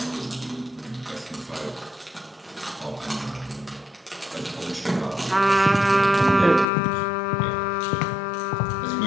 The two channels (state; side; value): drops out; right; at 6.7 s